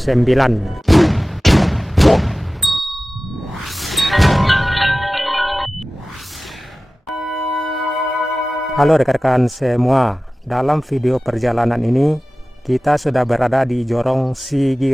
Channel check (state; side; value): normal; both; correlation 0.96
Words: Halo rekan-rekan semua, dalam video perjalanan ini kita sudah berada di Jorong